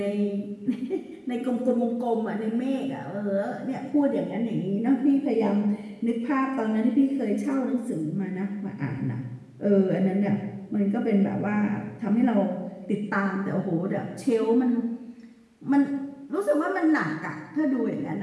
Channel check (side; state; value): both; identical; correlation 1.00